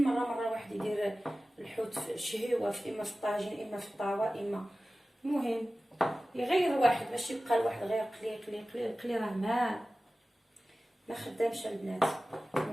مره واحد يدير الحوت في شهيوه، في اما في الطاجين اما في الطاوه، اما المهم يغير واحد باش يبقى الواحد غير قلي قلي قلي قلي، راه ما خدامش البنات.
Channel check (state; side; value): normal; both; correlation 0.96